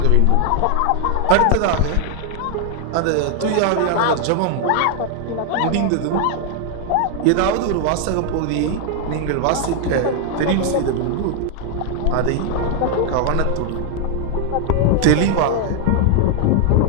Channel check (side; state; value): both; different; correlation 0.00